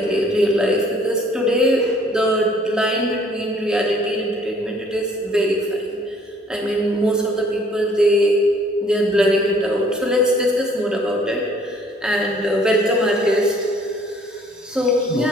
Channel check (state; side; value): normal; both; correlation 0.59